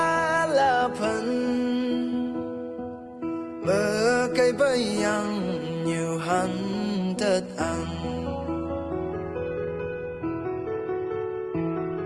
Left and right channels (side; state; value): both; identical; correlation 1.00